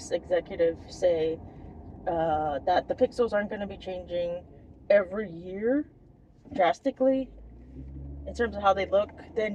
executive say that the pixels aren't going to be changing every year drastically in terms of how they look,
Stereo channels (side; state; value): both; identical; correlation 1.00